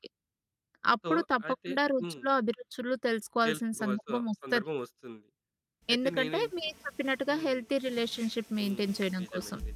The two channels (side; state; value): both; identical; correlation 1.00